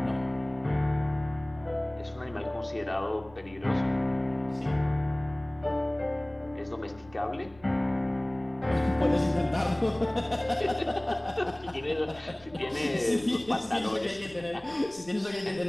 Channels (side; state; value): left; noise; rumble, 24 dB below the sound